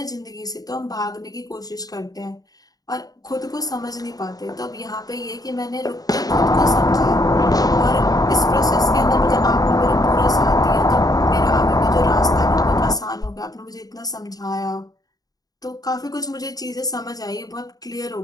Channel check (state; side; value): late; right; 0.18 ms